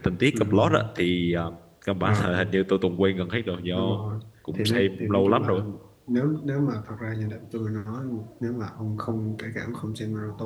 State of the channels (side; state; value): both; identical; correlation 1.00